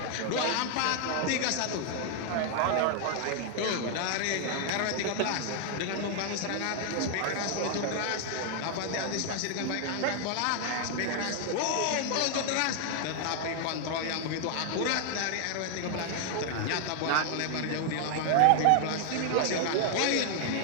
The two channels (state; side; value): different; both; correlation 0.00